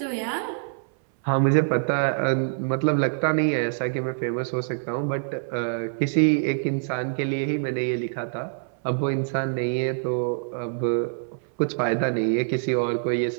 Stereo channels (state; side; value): silent; left; 59 dB below the other